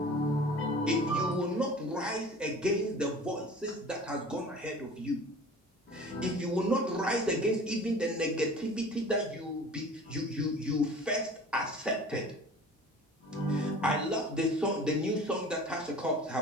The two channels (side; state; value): both; normal; correlation 0.43